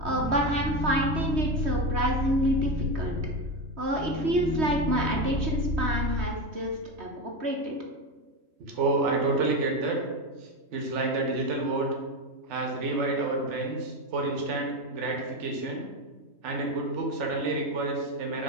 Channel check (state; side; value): late; left; 3.2 ms